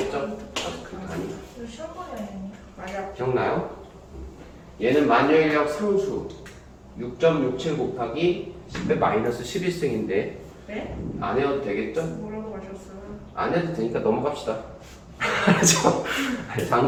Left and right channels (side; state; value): both; identical; correlation 1.00